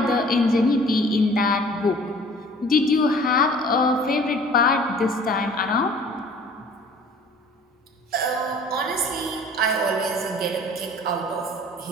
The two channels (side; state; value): both; normal; correlation 0.50